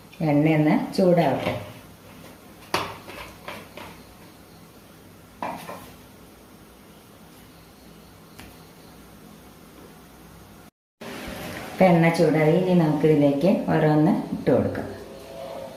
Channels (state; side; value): identical; both; correlation 1.00